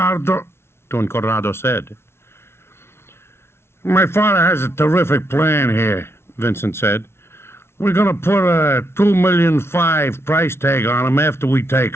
Don Corrado said. My father has a terrific plan here, Vincent said. We're going to put a $2.5 million price tag on him after we take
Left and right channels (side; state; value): right; late; 0.12 ms